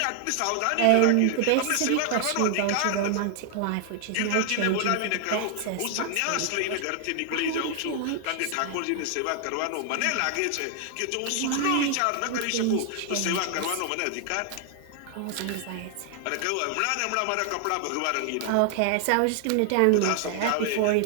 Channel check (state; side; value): different; both; correlation 0.00